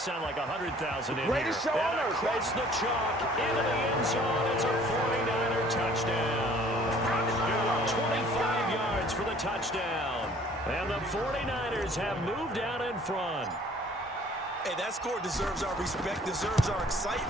like 100,000 in Greatest here. show on And earth, across the chalk, into the end zone. It's a 49er touchdown. 25 yards for the touchdown. And the 49ers have moved out in front. Hey, that score deserves our respect, deserves our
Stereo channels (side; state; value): both; normal; correlation 0.54